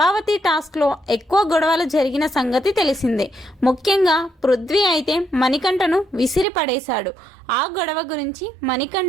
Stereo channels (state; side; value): drops out; left; at 6.5 s